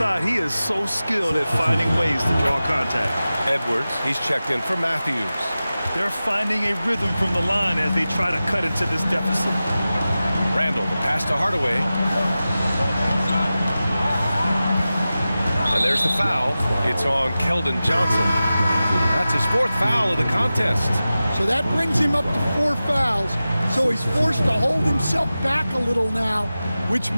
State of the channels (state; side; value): inverted; both; correlation -0.95